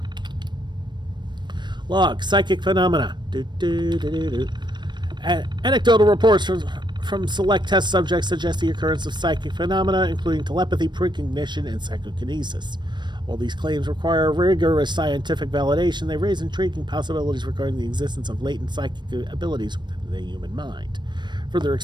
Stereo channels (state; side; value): late; left; 0.22 ms